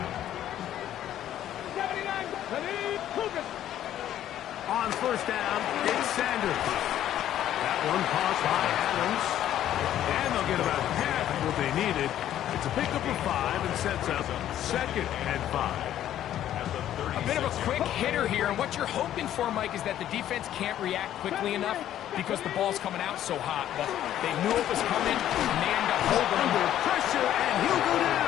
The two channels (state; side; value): quieter; right; 11.7 dB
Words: 79, ready, focus. On first down, it's Sanders. That one caught by Adams. And they'll get about half of what they needed. It's a pickup of 5 and sets up 2nd and 5. A bit of a quick hitter here, and what you're hoping for, Mike, is that the defense can't react quickly enough because the ball's coming out so hot. But they knew it was coming, and they end up holding him. Under pressure, and he'll go